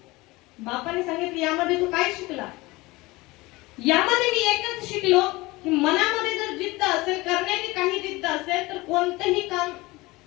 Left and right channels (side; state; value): right; quieter; 21.6 dB